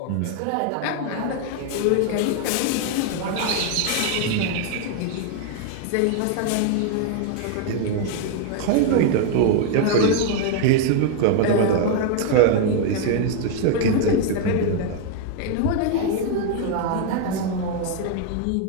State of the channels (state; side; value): different; both; correlation 0.01